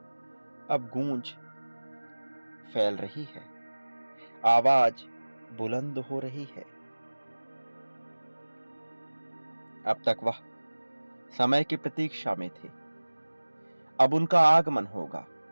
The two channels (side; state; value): both; inverted; correlation -1.00